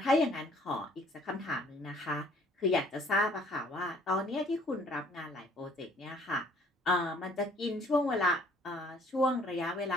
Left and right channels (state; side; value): normal; both; correlation 0.58